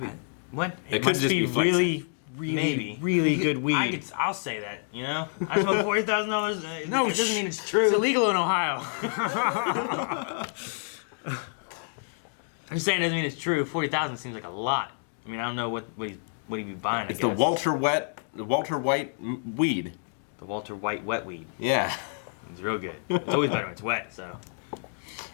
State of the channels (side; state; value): right; silent; digital silence